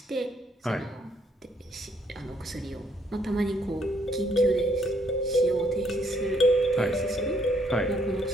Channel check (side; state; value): both; normal; correlation 0.69